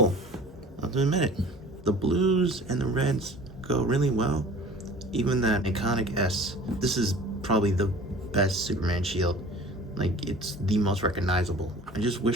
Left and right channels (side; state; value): both; normal; correlation 0.45